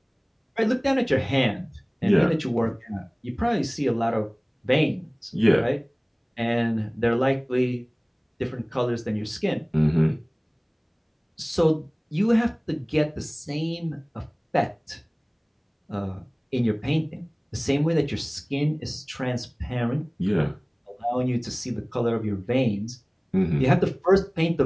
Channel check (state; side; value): identical; both; correlation 1.00